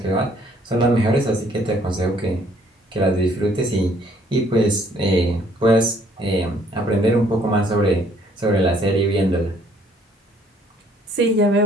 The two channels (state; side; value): normal; both; correlation 0.63